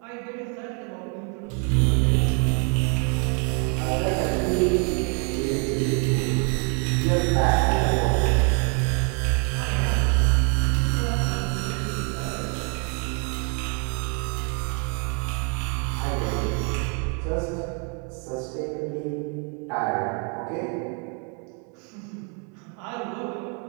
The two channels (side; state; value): left; quieter; 37.0 dB